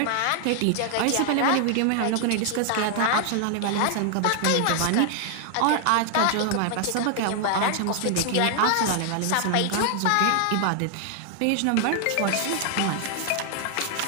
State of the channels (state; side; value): different; both; correlation 0.00